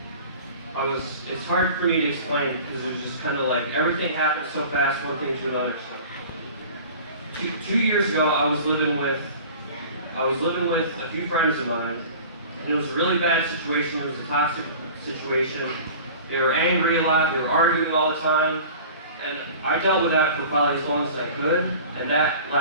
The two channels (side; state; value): both; inverted; correlation -0.41